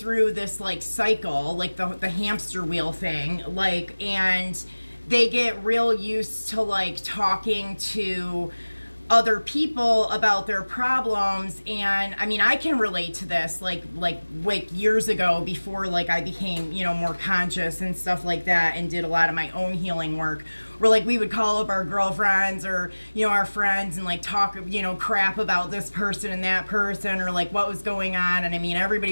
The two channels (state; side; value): inverted; both; correlation -1.00